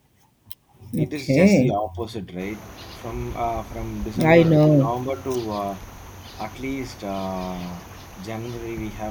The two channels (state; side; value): identical; both; correlation 1.00